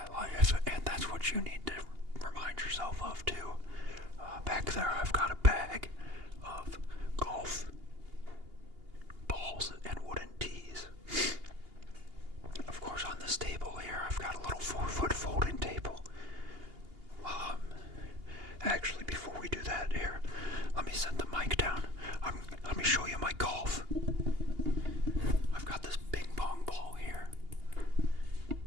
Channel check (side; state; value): left; late; 2.8 ms